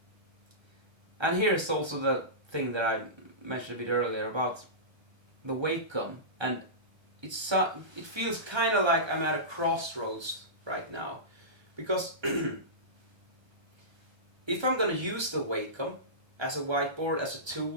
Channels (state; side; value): late; left; 1.3 ms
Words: And here's also the thing that I mentioned a bit earlier about the Wacom, and it feels kind of like I'm at a crossroads right now, because if I'm going to use the Wacom as a whiteboard, as a